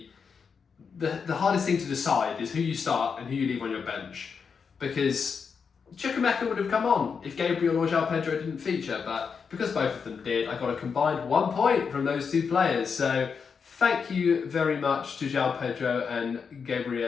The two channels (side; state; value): right; quieter; 5.9 dB